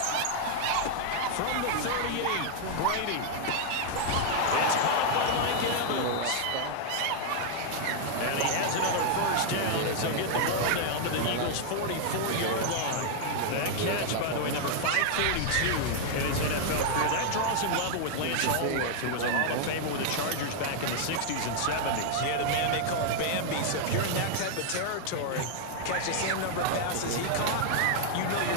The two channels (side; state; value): both; different; correlation 0.00